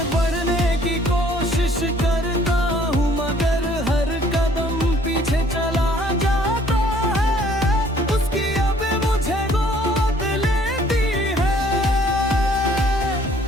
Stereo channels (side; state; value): both; normal; correlation 0.59